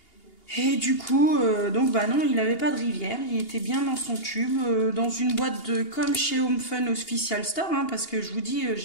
Et du coup, donc non, il n'avait pas de rivière, il était bien dans son tube, dans une boîte comme chez Home Fun Official Store, hein, parce que je vous dis,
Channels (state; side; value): late; right; 2.8 ms